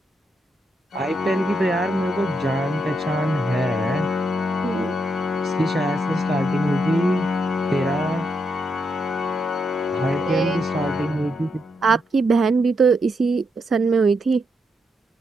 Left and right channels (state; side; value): normal; both; correlation 0.81